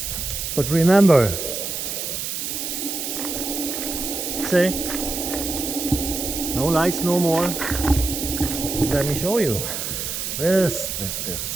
But remember, see, no lights no more. Let me show you. This.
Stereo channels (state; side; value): noise; right; hiss, 4 dB below the sound